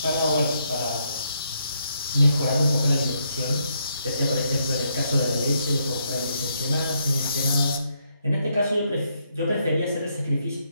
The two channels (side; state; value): both; inverted; correlation -0.76